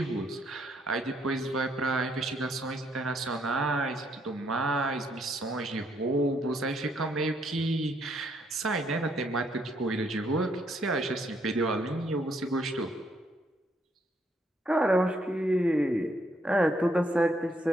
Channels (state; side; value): normal; both; correlation 0.71